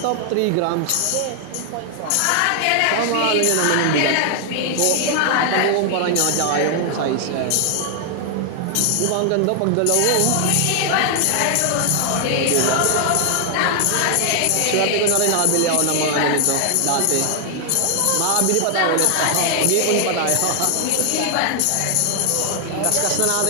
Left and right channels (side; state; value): both; different; correlation 0.00